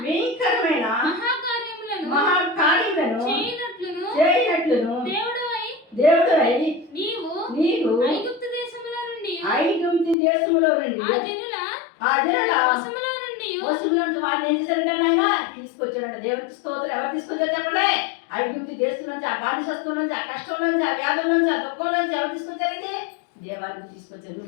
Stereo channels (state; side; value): drops out; right; at 10.2 s